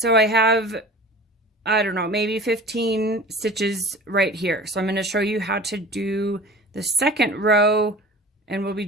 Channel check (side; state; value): both; normal; correlation 0.40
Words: I have, I don't know, maybe 15 stitches right here. So I'm going to show you how to do the second row, and we'll be